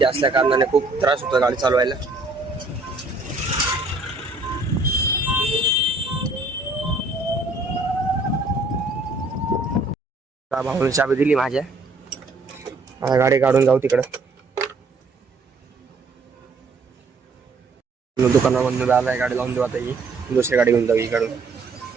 असल्या कारणाने खूप त्रास होतो गाडी चालवायला. भाऊने चाबी दिली माझ्या. आता गाडी काढून जाऊ तिकडं. दुकानामधून आलाय, गाडी लावून देऊ आता. ही दुसरी गाडी घेऊन जाऊ. इकडून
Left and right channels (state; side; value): quieter; left; 3.5 dB